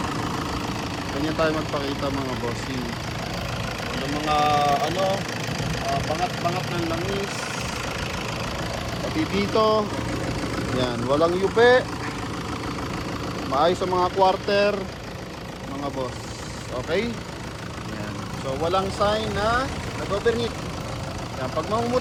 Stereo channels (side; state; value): both; identical; correlation 1.00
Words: Ganyan tayo magpakita mga bossing. Yung mga bangat-bangat ng langis. Pati dito. Yan, walang yupe. Maayos sa mga quarter mga boss. Okay? Yan. So walang sign na nag-overheat. Yan, pag